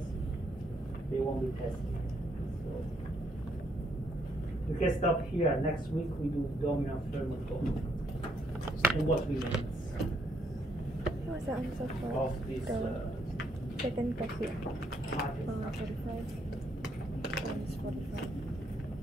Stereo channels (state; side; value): normal; both; correlation 0.72